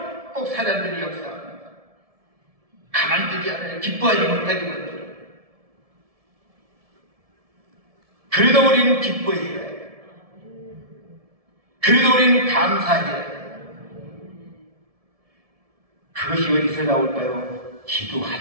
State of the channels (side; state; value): left; late; 1.7 ms